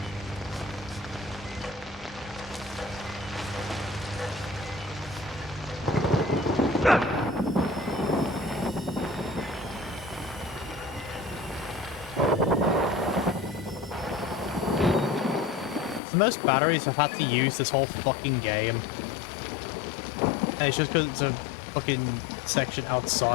The most batteries I've had to use this whole fucking game. And it's just because it's a fucking section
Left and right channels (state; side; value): drops out; right; at 16.0 s